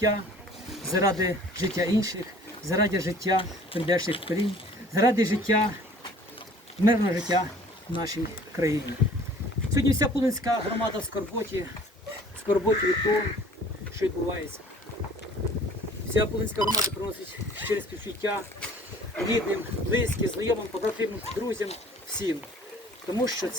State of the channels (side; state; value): both; normal; correlation 0.51